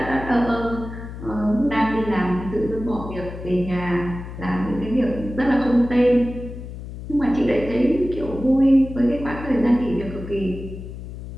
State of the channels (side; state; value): left; noise; hum, 11 dB below the sound